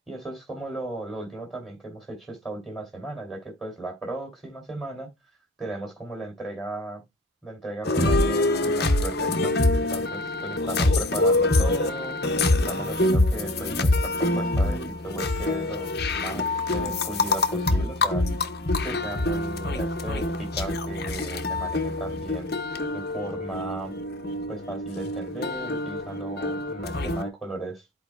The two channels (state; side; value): normal; both; correlation 0.43